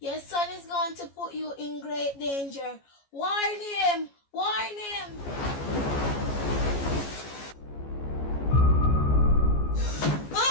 son is going to put you in great danger. Warn him! Warn him!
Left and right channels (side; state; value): right; late; 14 ms